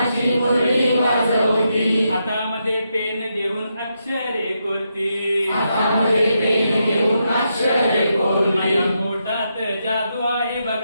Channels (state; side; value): inverted; both; correlation -0.83